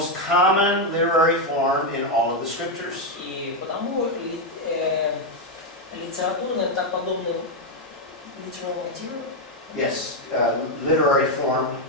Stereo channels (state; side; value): normal; both; correlation 0.04